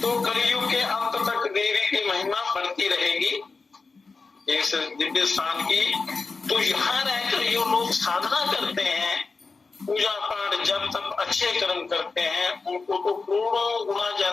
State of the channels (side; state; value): right; quieter; 4.2 dB